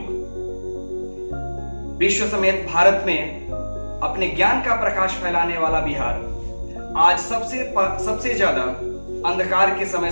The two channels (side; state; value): both; inverted; correlation -1.00